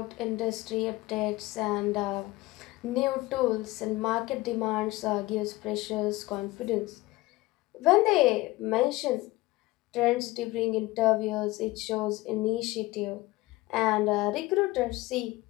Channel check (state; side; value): quieter; right; 20.0 dB